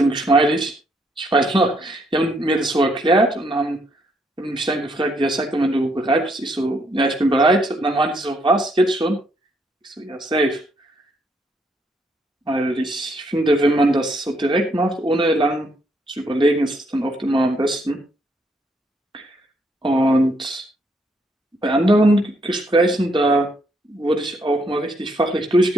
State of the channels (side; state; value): both; normal; correlation 0.73